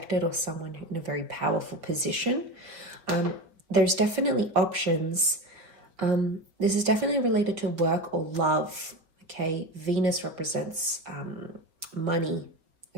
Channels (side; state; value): left; late; 5.0 ms